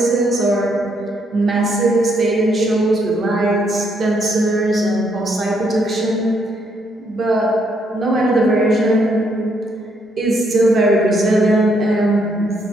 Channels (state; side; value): normal; both; correlation 0.73